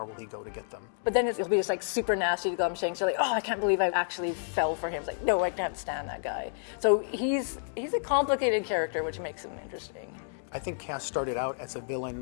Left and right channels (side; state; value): right; silent; digital silence